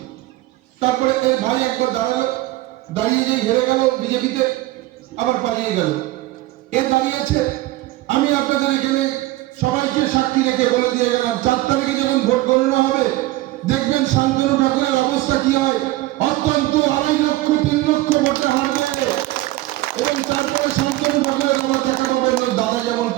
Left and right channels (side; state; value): left; quieter; 17.8 dB